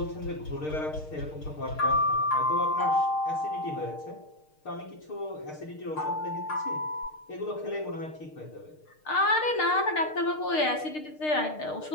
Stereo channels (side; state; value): right; late; 6.5 ms